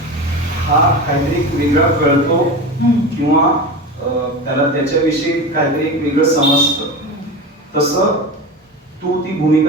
हा काहीतरी एक वेगळा कळतो किंवा त्याला त्याच्याविषयी काहीतरी एक वेगळं समजतं. तसं तू ती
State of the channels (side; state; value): both; normal; correlation 0.26